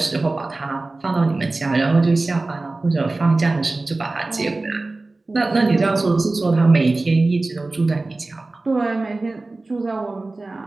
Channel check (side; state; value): left; quieter; 3.2 dB